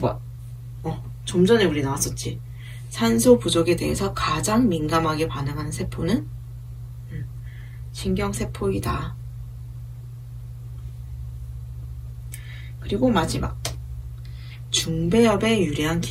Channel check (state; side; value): identical; both; correlation 1.00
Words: 좀 전에 우리 나왔었지. 산소 부족에 대해서 가장 민감하게 반응하는 세포는 신경세포이다. 그리고 마지막. 중배엽에 유리한